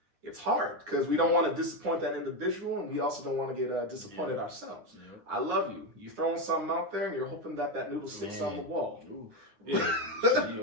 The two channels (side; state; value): left; late; 9.7 ms